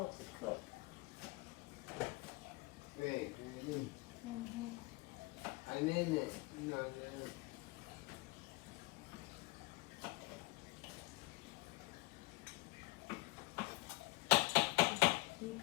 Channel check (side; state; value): right; quieter; 23.0 dB